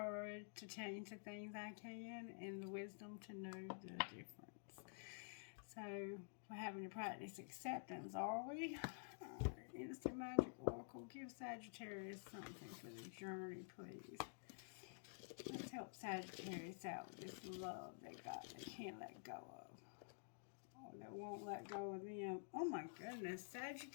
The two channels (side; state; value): right; silent; digital silence